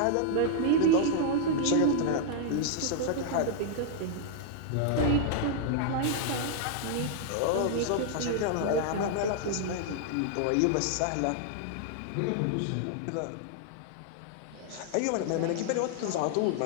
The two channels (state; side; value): different; both; correlation 0.00